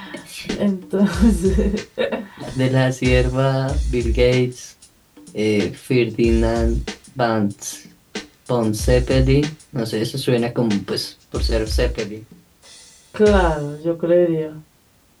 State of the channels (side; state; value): both; identical; correlation 1.00